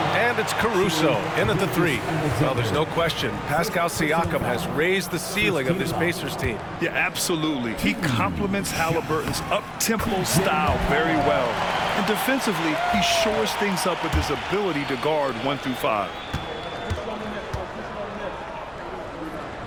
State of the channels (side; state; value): both; identical; correlation 1.00